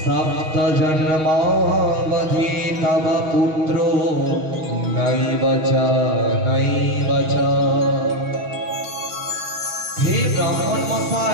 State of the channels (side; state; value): left; late; 6.4 ms